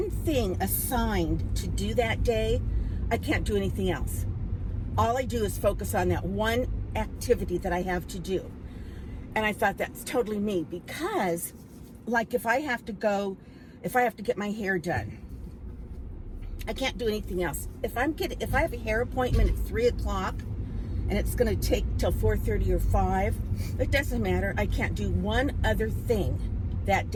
thing assigned to do that day, I can't do anything else? All I do is focus on that one activity that I have to do. And I thought that's totally me, because like if I have to get my hair done, I can't do anything else. If I have a hair appointment at 3 o'clock, and it's going to take till 4:30 or 5, it doesn't matter. I can't do one other thing that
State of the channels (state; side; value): identical; both; correlation 1.00